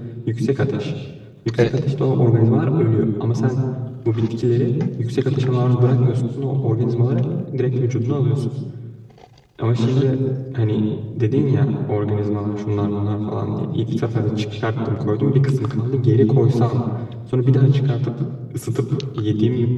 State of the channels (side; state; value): both; identical; correlation 1.00